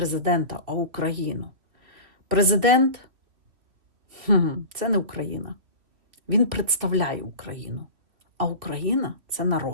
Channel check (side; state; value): left; late; 2.7 ms